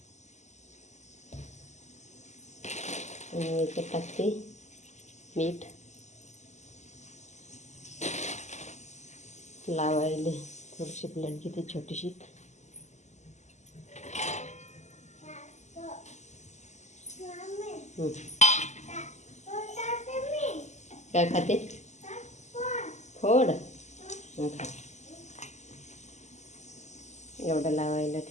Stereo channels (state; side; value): late; right; 0.33 ms